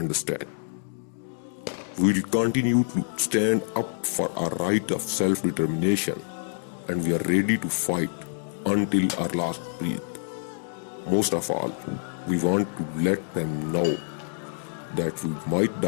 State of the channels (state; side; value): silent; right; digital silence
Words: We will continue to stand up for our right of self-determination, and we are ready to fight until our last breath. Most of all, we want to let them know that we might